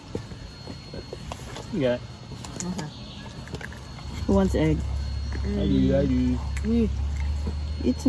Yeah. Who wants egg? I do. Eat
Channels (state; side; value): identical; both; correlation 1.00